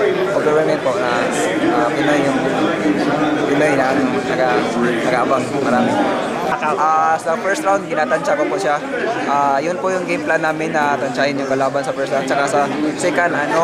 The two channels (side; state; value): both; identical; correlation 1.00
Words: Overwhelming po na Pinoy na nag-aabang marami. Sa first round, ginatansya ko po siya. Yun po yung game plan namin na tansyahin yung kalaban sa first round. Tsaka sa second,